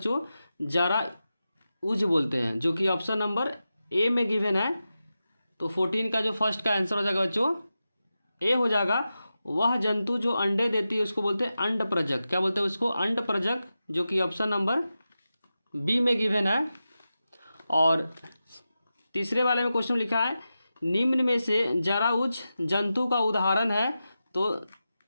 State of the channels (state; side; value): inverted; both; correlation -0.92